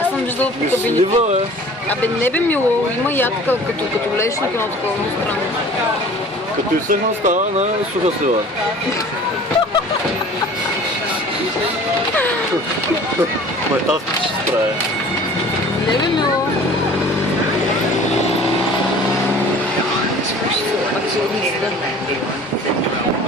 Аз съм виждала по кабините. Слива, Абе, не бе мило. Има ядка, като влезеш на едно такова странно. Като изсъхна става на суха слива. Ма тази ще се справя. Не бе мило.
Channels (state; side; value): normal; both; correlation 0.46